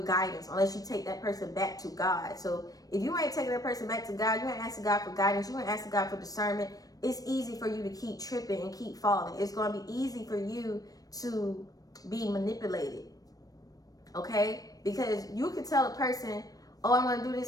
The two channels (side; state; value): right; late; 0.18 ms